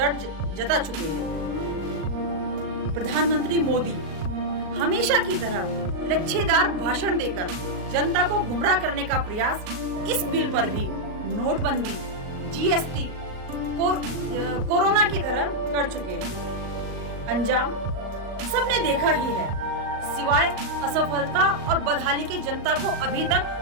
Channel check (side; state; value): left; late; 38 ms